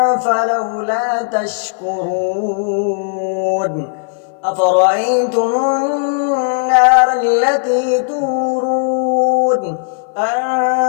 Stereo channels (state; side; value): silent; right; 58 dB below the other